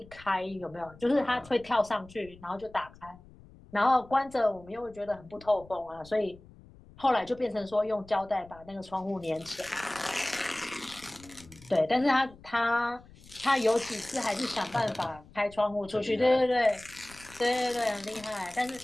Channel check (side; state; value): left; noise; rumble, 22 dB below the sound